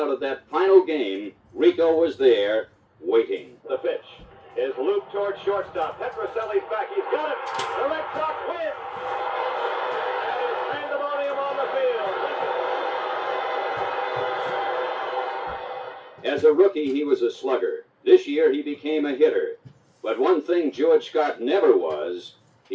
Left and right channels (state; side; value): identical; both; correlation 1.00